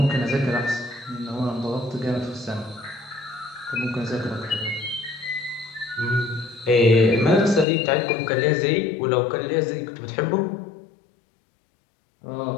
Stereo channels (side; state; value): right; drops out; at 7.7 s